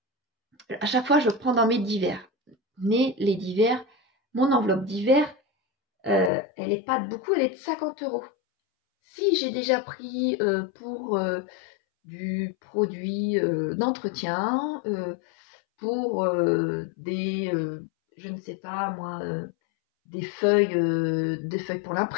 à chaque fois, je prends dans mes divers. Mais les divers, mon enveloppe divers, elle n'est pas de beaucoup, elle est de 50 €. Si j'ai déjà pris pour du produit d'entretien, pour je ne sais pas moi, des feuilles pour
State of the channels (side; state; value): right; drops out; at 6.3 s